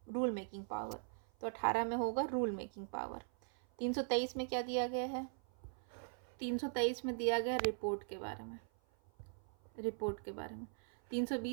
रूल मेकिंग पावर। तो 18 में होगा रूल मेकिंग पावर। 323 में क्या दिया गया है? 323 में दिया गया रिपोर्ट के बारे में।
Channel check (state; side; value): silent; left; 51 dB below the other